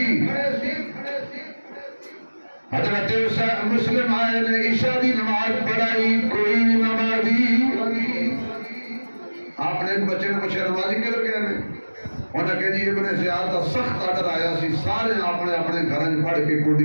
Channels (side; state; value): both; inverted; correlation -1.00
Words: حضرت مسلم آئے نے عشاء دی نماز پڑھائی، کوئی نمازی. آپ نے ایک بچے نے پوچھا نمازی کیوں کہہ رہے ہیں؟ انہوں نے کہا جی ابن زیاد کا سخت آڈر آیا سی، سارے اپنے اپنے گھر پڑھ کے